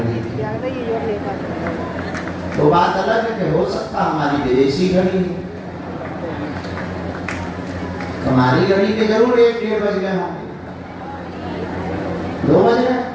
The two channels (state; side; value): identical; both; correlation 1.00